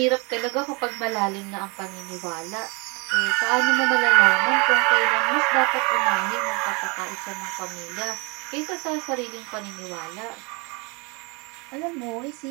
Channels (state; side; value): quieter; left; 30.3 dB